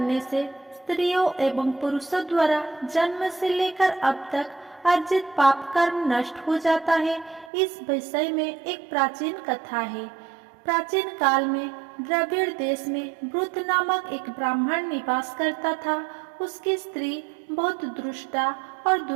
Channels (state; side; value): drops out; left; at 7.5 s